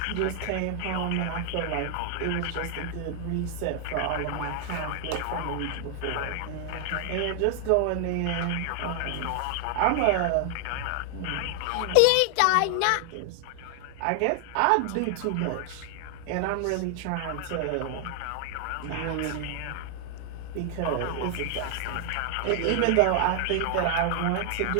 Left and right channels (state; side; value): different; both; correlation 0.00